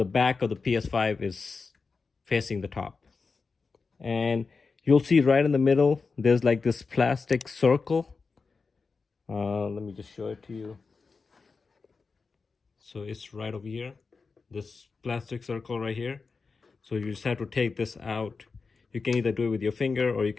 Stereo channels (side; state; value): right; quieter; 4.6 dB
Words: back of the PS5 is facing the top. And you'll see right in the middle, there's like this plastic circle. Let me just show it to you. So it's right over here, this plastic circle right here. So you just have to take this out. You can either do it with your finger or you